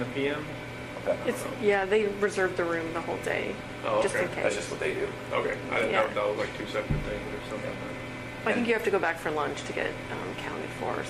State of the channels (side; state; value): both; identical; correlation 1.00